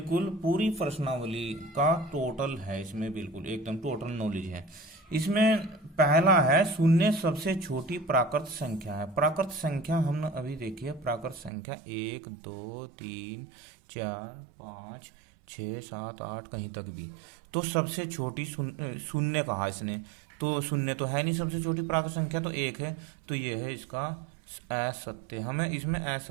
पूरी प्रश्नावली का टोटल है, इसमें बिल्कुल एकदम टोटल नॉलेज है। इसमें पहला है शून्य सबसे छोटी प्राकृत संख्या है। प्राकृत संख्या हमने अभी देखी है, प्राकृत संख्या 1 2 3 4 5 6 7 8 कहीं तक भी। तो सबसे छोटी शून्य कहा इसने, तो शून्य तो है नहीं, सबसे छोटी प्राकृत संख्या तो 1 है, तो ये है इसका असत्य। हमें इसमें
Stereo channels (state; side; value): drops out; left; at 11.5 s